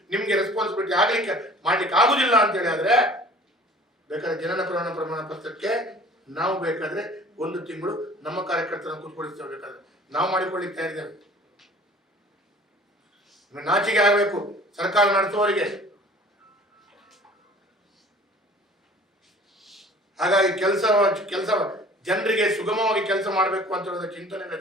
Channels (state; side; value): normal; both; correlation 0.48